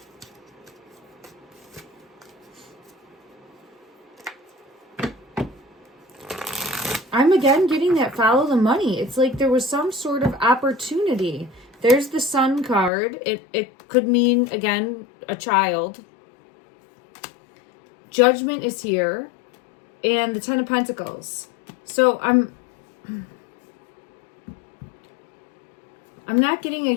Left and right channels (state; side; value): drops out; right; at 12.9 s